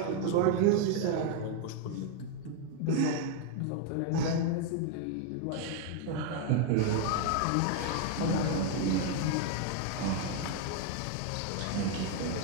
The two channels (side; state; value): both; different; correlation 0.00